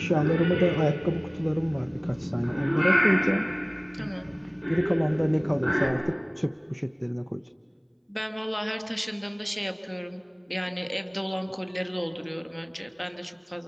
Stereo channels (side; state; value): both; identical; correlation 1.00